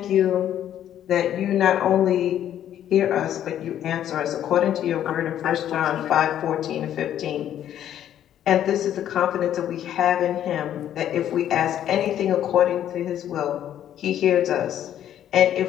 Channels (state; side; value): quieter; right; 10.9 dB